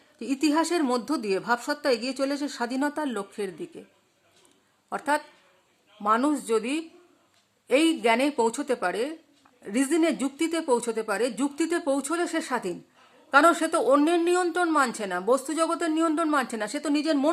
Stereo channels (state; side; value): identical; both; correlation 1.00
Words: যে ইতিহাসের মধ্য দিয়ে ভাবসত্তা এগিয়ে চলেছে স্বাধীনতার লক্ষ্যের দিকে। অর্থাৎ মানুষ যদি এই জ্ঞানে পৌঁছতে পারে, রিজনে, যুক্তিতে পৌঁছতে পারে, যুক্তিতে পৌঁছলে সে স্বাধীন। কারণ সে তো অন্যের নিয়ন্ত্রণ মানছে না, বস্তু জগতের নিয়ন্ত্রণ মানছে না, সে তো নিজের